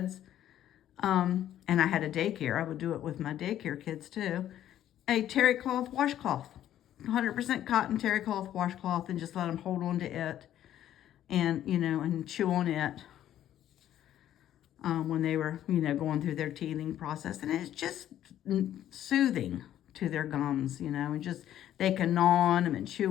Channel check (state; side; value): quieter; right; 11.7 dB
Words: and I had a daycare, I would do it with my daycare kids too, a terry cloth washcloth, 100% cotton terry cloth washcloth, and just let them hold on to it and, you know, and chew on it. When they were, you know, going through their teething process. And it's just soothing to their gums, you know, and just, they can gnaw on them and chew